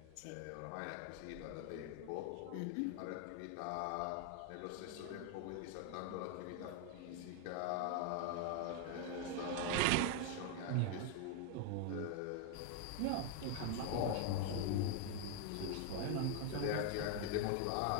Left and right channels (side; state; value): both; different; correlation 0.00